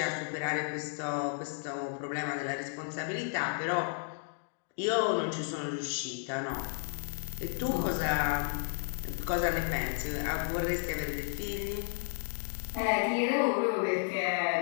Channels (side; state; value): right; silent; 56 dB below the other